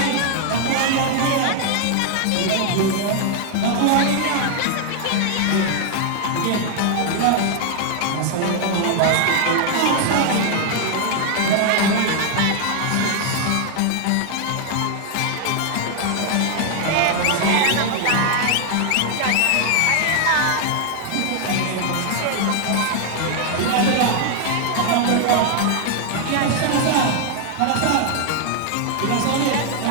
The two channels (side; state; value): both; different; correlation 0.00